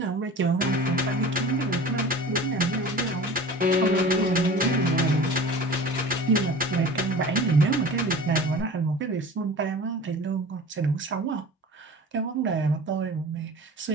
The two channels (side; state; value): both; normal; correlation 0.38